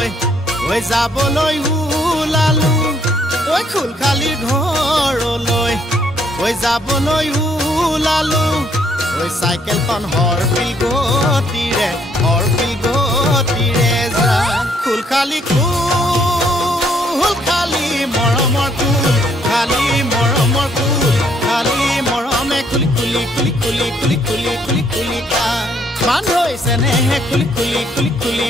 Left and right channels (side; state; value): both; normal; correlation 0.68